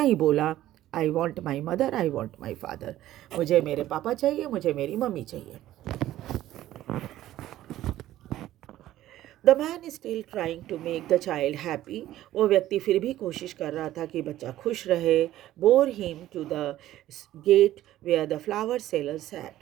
ही बोला, I want my mother, I want my father. मुझे मेरे पापा चाहिए, मुझे मेरी मम्मी चाहिए। The man is still trying to make the child happy. वो व्यक्ति फिर भी कोशिश कर रहा था कि बच्चा खुश रहे। Bore him to the gate where the flower seller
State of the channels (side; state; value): left; quieter; 14.0 dB